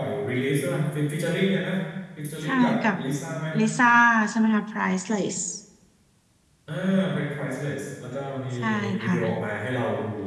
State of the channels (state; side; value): identical; both; correlation 1.00